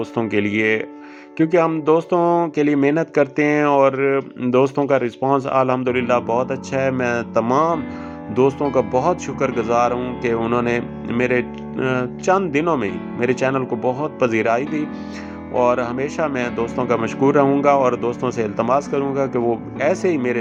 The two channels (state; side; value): identical; both; correlation 1.00